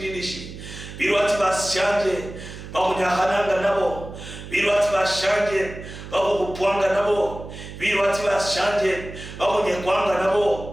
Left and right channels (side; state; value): right; noise; hum, 12 dB below the sound